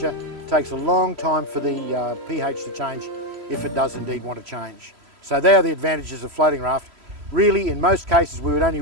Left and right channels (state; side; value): late; left; 3.0 ms